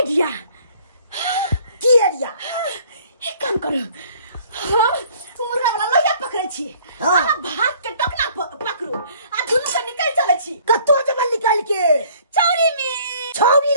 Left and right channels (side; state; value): both; inverted; correlation -0.56